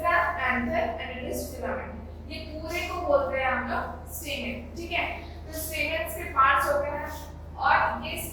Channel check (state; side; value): identical; both; correlation 1.00